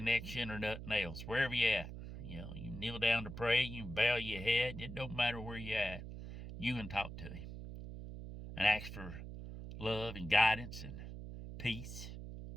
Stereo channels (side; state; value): right; noise; hum, 9 dB below the sound